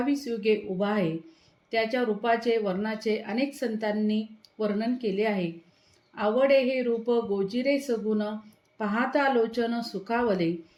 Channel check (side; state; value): both; identical; correlation 1.00